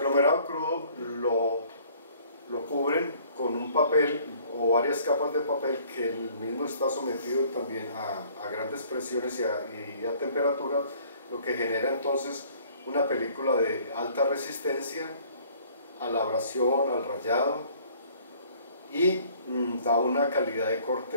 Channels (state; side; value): inverted; both; correlation -0.56